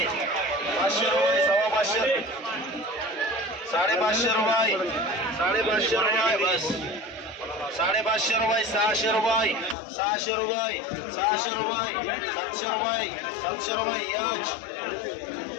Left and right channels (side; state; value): right; drops out; at 9.8 s